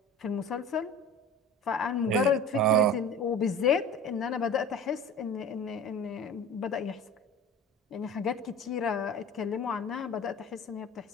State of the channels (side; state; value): both; normal; correlation 0.37